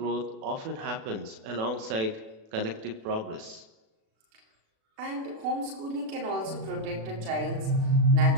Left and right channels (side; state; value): left; late; 36 ms